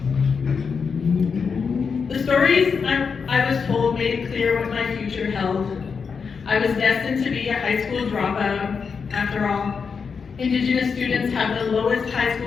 The stories I was told made it clear what my future held. I was destined to be a high school dropout. After all, Indigenous students have the lowest high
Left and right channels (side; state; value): right; quieter; 5.7 dB